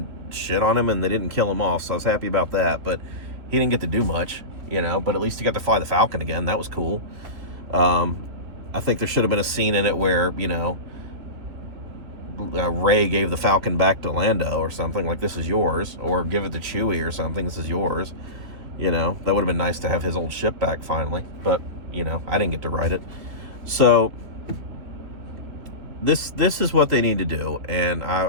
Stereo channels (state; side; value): late; left; 3.0 ms